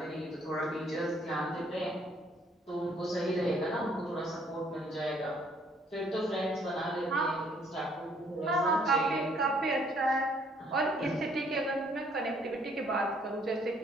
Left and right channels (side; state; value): both; normal; correlation 0.64